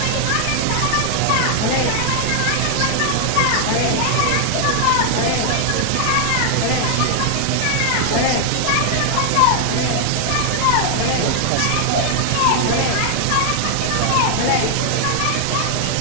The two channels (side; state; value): both; different; correlation 0.00